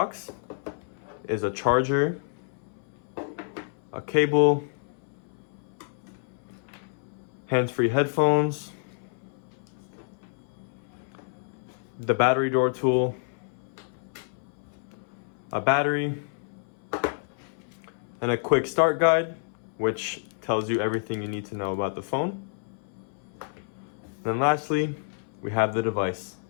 is a charger, a cable, hands-free headphones, the battery door tool, a battery, and a quick start guide, which tells you everything you need to know about the phone. And lastly, we have the device.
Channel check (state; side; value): silent; right; 59 dB below the other